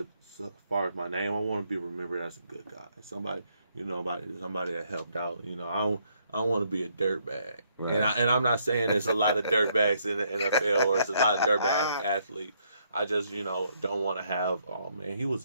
far as my name, I want to be remembered as a good guy. Somebody that helped out. I don't want to be a dirtbag. Right. And I'm not saying there's a lot of dirtbags in the NFL or there's a lot of dirtbag athletes. I just don't want to have, oh man, he was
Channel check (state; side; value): inverted; both; correlation -0.72